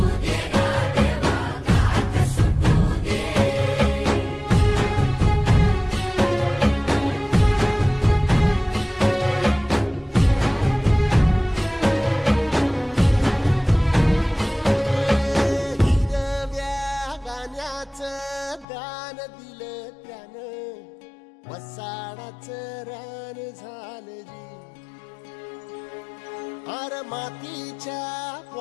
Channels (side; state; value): right; drops out; at 18.7 s